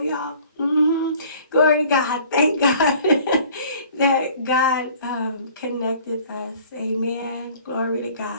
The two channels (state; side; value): inverted; both; correlation -0.51